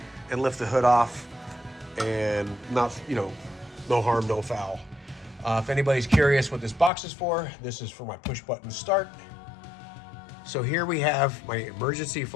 and lift the hood off. and not, no harm, no foul. If anybody's curious what this box is for, this is for my push button start. So here we have my emergency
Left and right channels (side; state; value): right; drops out; at 6.9 s